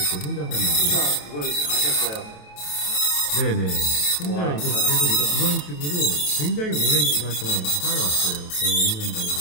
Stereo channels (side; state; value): right; late; 28 ms